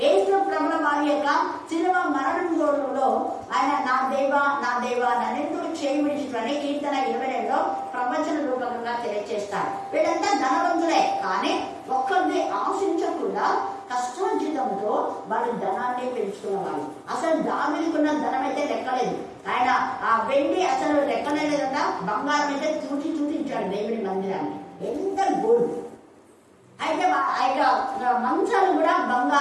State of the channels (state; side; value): identical; both; correlation 1.00